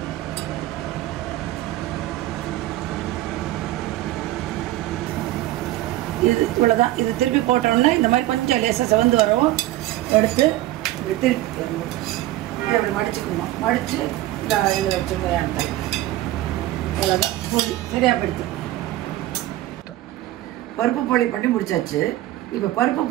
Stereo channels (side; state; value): left; quieter; 15.7 dB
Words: இது இவ்வளோதான். இது திருப்பி போட்டோம்னா இந்த மாதிரி கொஞ்சம் லேசாக செவந்து வரும். எடுத்து இப்படி திருப்பி இப்படி மடிச்சுக்கணும். மடித்து இந்த இதில் வச்சுருந்தேன். இவ்வளோதான் போட்டு சரியாக போயிடுத்து. பருப்பு போலி பண்ணி முடிச்சாச்சு. இப்போ பருப்பு